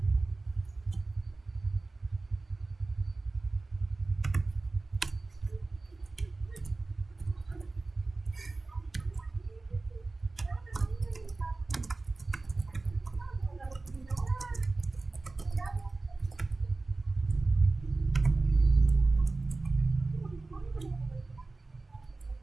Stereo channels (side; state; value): left; quieter; 3.4 dB